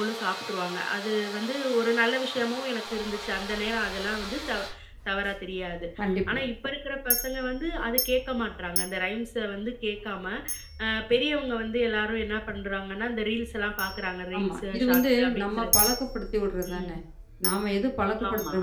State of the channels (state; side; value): identical; both; correlation 1.00